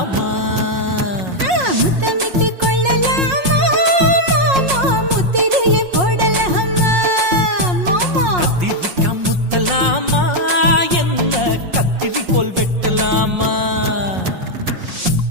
முத்தமிட்டு கொள்ளலாமா மாமா முத்திரைய போடலாமா மாமா கத்திரிக்கா முத்தலாமா என்ன கத்திரி போல் வெட்டலாமா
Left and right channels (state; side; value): late; left; 5.5 ms